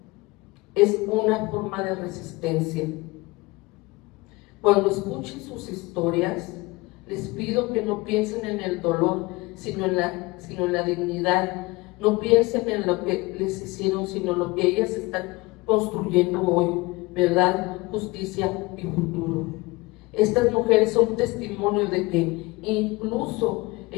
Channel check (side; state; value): right; quieter; 23.1 dB